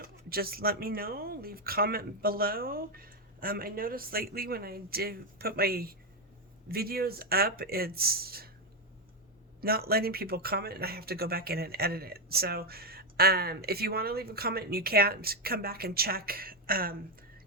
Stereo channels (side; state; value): both; normal; correlation 0.05